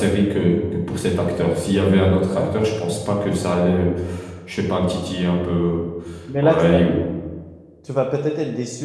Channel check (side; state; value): both; identical; correlation 1.00